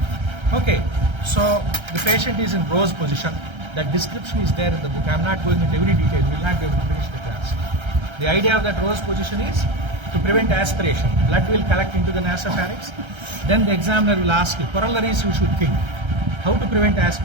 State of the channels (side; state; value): left; late; 1.3 ms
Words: Okay, so the patient is in rose position. That description is there in the book. I am not going into every detail. We will not be able to finish the class. The idea of that rose position is to prevent aspiration. Blood will collect into the nasopharynx. Then the examiner will ask you, corollaries you should think. How to prevent